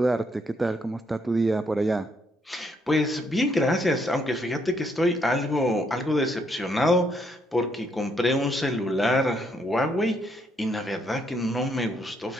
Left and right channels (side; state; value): both; normal; correlation 0.73